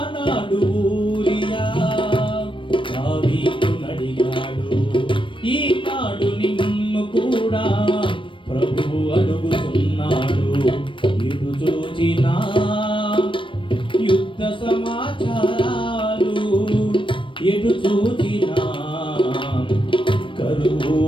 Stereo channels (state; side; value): late; right; 0.25 ms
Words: ఊరియా దావీదును అడిగాడు. ఈనాడు నిన్ను కూడా ప్రభువు అడుగుతున్నాడు. ఇటు చూచిన యుద్ధ సమాచారాలు, ఎటు చూచిన కరువు